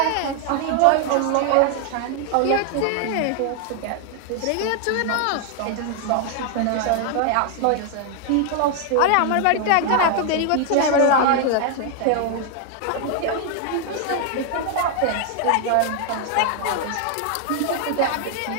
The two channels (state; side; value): different; both; correlation 0.00